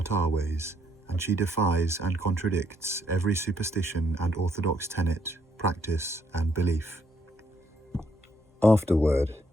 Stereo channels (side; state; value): both; normal; correlation 0.71